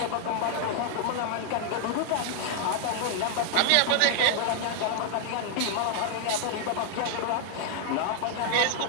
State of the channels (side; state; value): both; different; correlation 0.00